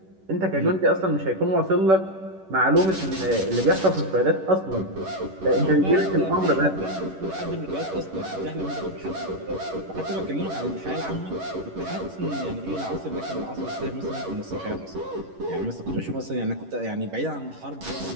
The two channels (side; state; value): left; late; 11 ms